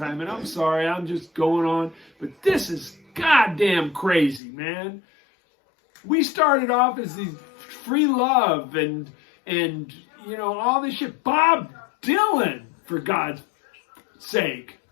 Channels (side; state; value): right; drops out; at 4.4 s